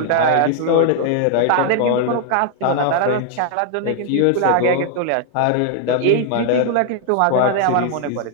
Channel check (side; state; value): both; different; correlation 0.00